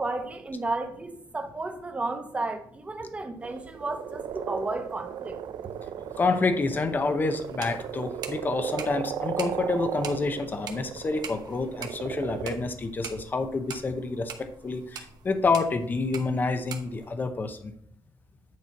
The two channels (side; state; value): both; normal; correlation 0.74